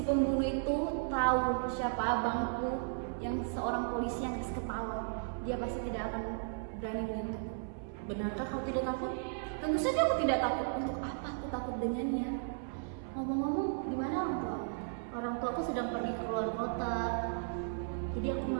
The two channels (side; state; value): left; silent; 54 dB below the other